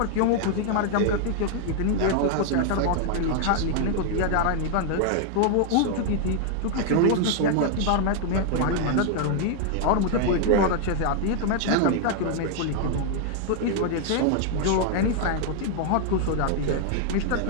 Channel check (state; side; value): different; both; correlation 0.00